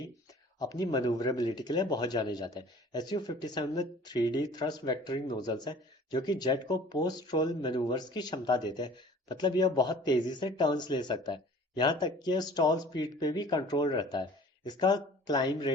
अपनी मनूवरेबिलिटी के लिए बहुत जाने जाते हैं। Su-57 में 3D थ्रस्ट वेक्टरिंग नोजल्स हैं जो कि जेट को पोस्ट रोल मैनूवर्स की क्षमता देते हैं। मतलब यह बहुत तेजी से टर्न्स ले सकता है, यहाँ तक कि स्टॉल स्पीड पे भी कंट्रोल रहता है। इसका क्लाइम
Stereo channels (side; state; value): both; normal; correlation 0.48